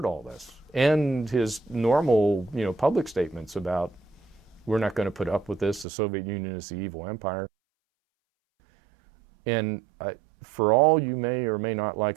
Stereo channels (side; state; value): left; drops out; at 5.9 s